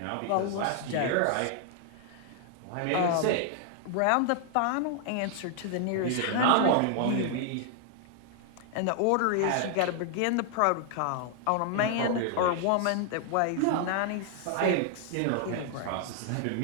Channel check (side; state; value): both; different; correlation 0.00